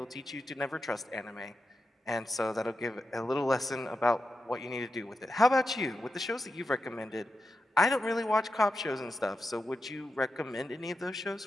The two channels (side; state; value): both; normal; correlation 0.88